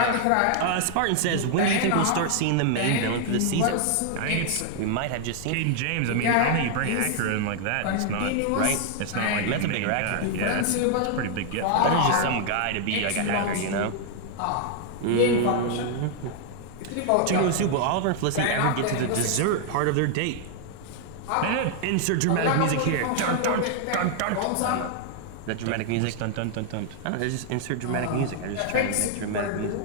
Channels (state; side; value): different; both; correlation 0.00